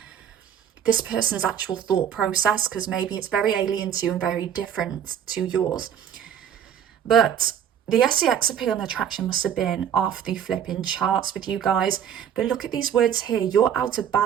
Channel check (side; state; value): left; quieter; 9.0 dB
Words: this person's actual thought process, because maybe it's very alien to you and very different to yours. But the SEX appeal and attraction must have been off the flipping charts with you guys. But look at these words here. You're out of